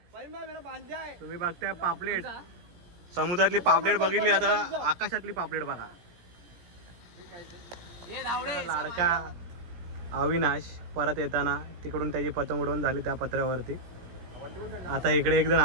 तुम्ही बघताय. पापलेट समुद्रातली पापलेट बघितली, आता आकाशातली पापलेट बघा. लाडका अविनाश परत येताना तिकडून त्याची पतंग उडवून झाली त्या पत्र्यावरती. आता इकडे एक जण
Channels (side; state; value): left; late; 17 ms